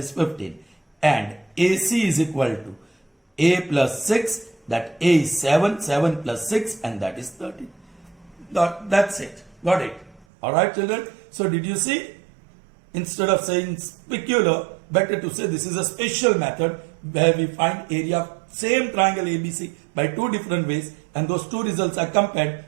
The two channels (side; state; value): left; drops out; at 10.2 s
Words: 15. And AC is equal to A plus 6, that A is 7, 7 plus 6 and that is 13. That's it. Got it. Alright children. So did you see? Instead of saying specular, better to say this is a special method where we find area of same triangle ABC by two different ways and those two results are